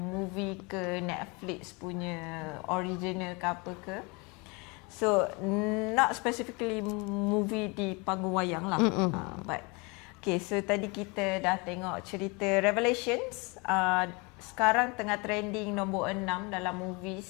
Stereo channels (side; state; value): right; quieter; 29.1 dB